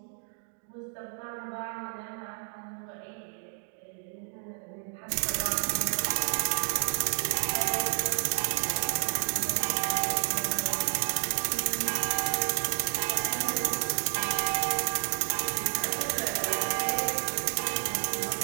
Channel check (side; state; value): left; silent; digital silence